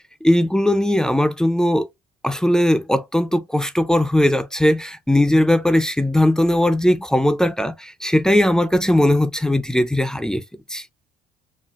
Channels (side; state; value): both; normal; correlation 0.95